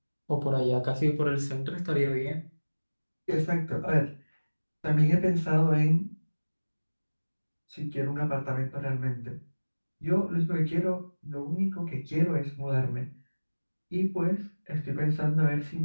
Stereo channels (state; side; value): inverted; both; correlation -1.00